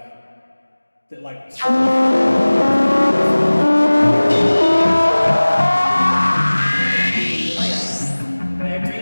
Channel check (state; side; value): inverted; both; correlation -1.00